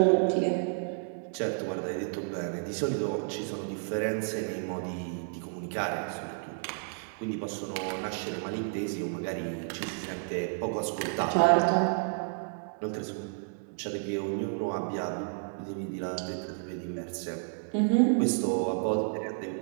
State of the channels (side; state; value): left; silent; digital silence